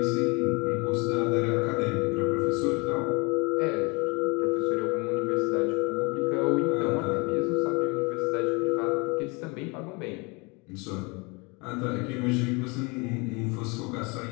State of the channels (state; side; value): quieter; right; 28.8 dB